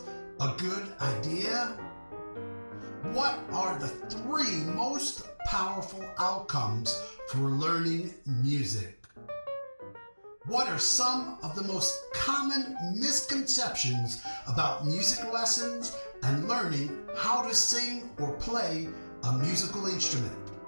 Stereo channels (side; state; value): both; inverted; correlation -1.00